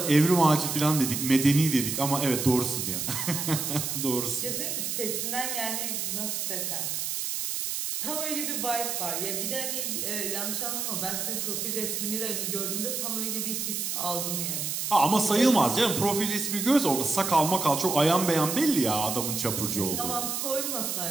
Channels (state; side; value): noise; right; hiss, 2 dB below the sound